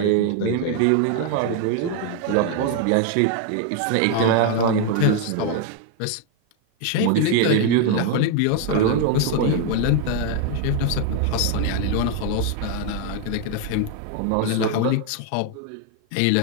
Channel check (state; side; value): different; both; correlation 0.01